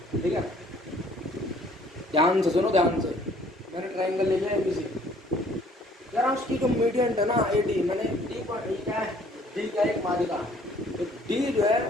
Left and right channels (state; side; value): normal; both; correlation 0.58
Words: ठीक है, ध्यान से सुनो, ध्यान से। मैंने ट्राइंगल ले लिया ए बी सी, यार उसकी जो मीडियंट है ना ए डी, मैंने डी पर डी क्या है, डी क्या है, एक माध्यिका। तो डी जो है,